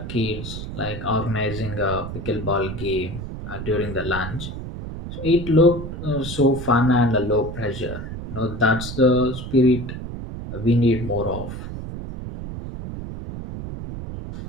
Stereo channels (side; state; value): right; noise; rumble, 8 dB below the sound